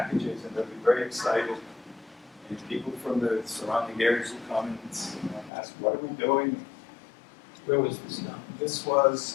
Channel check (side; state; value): right; drops out; at 5.5 s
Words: and they'll be very excited. And people from the surrounding areas will come and ask, what are we doing? Where was this done? This